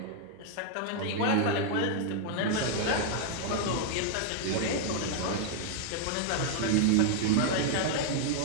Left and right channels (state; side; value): different; both; correlation 0.00